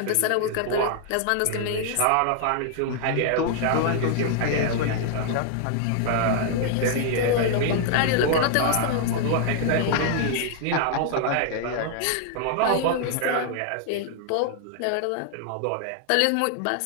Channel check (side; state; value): both; different; correlation 0.00